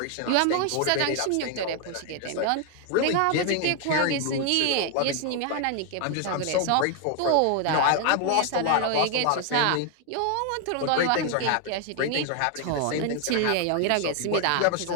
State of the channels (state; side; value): different; both; correlation 0.00